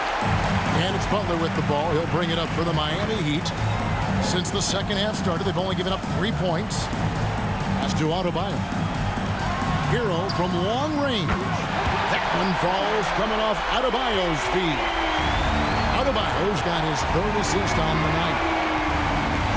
And it's Butler with the ball. He'll bring it up for the Miami Heat. Since the second half started, they've only given up 3 points. That's to Adebayo. Hero from long range. That one falls coming off Adebayo's feet. Adebayo's got his 3rd assist on the night.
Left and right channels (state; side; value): identical; both; correlation 1.00